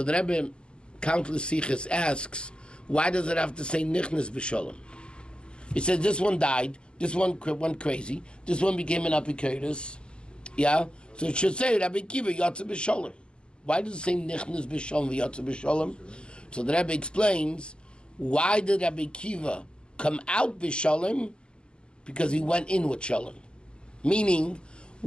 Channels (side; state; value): right; late; 0.053 ms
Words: the Rabbi, countless sichos, asks, Why does it have to say nichnas b'shalom? It says this one died, this one went crazy, this one became an apikoros. Yeah? So it should say Rabbi Kiva yatsa b'shalom. Why does it say nichnas b'shalom v'yatsa b'shalom? So the Rebbe explains, why did Rabbi Kiva come out b'shalom? Because he went in with shalom. Meaning,